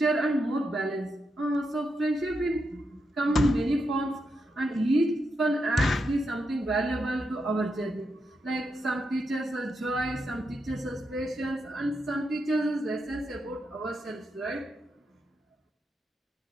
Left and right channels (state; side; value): normal; both; correlation 0.84